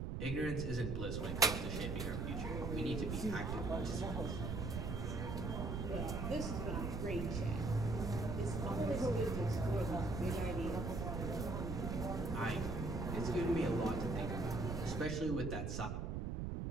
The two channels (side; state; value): right; noise; rumble, 2 dB below the sound